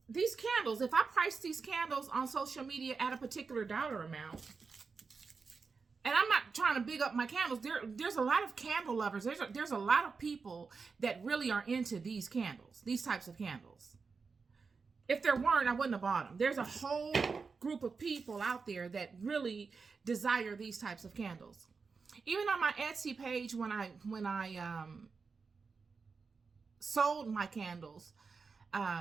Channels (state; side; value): quieter; left; 4.9 dB